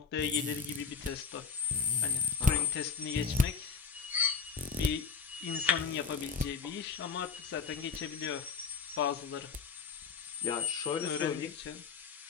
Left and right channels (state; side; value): quieter; right; 5.8 dB